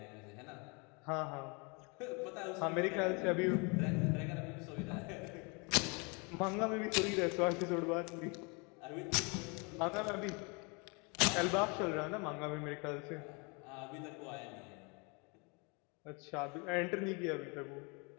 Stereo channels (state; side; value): quieter; right; 31.4 dB